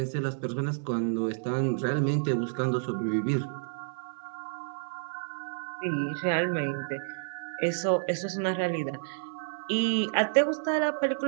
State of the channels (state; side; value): silent; left; digital silence